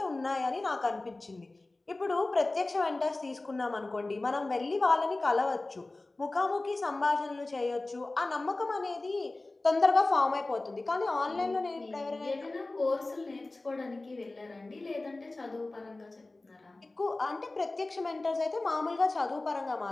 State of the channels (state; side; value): quieter; right; 3.0 dB